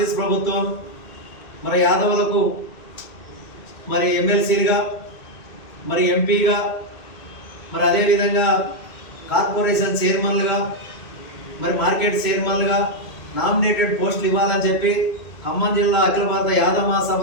ప్రభుత్వం మరి యాదవులకు మరి ఎమ్మెల్సీలుగా, మరి ఎంపీగా, మరి అదేవిధంగా కార్పొరేషన్ చైర్మన్లుగా, మరి మార్కెట్ చైర్మన్లుగా నామినేటెడ్ పోస్టులు ఇవ్వాలని చెప్పి ఖమ్మం జిల్లా అఖిల భారత యాదవ్ మహాసభ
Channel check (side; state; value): right; late; 2.2 ms